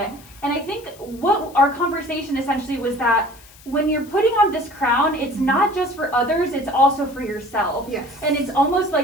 And I think what our conversation essentially was that when you're putting on this crown, it's not just for others, it's also for yourself. Yes. And it's almost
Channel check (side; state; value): left; noise; hiss, 23 dB below the sound